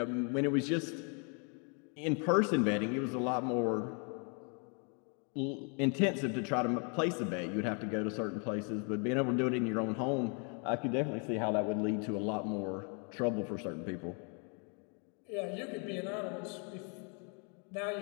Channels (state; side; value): quieter; right; 38.0 dB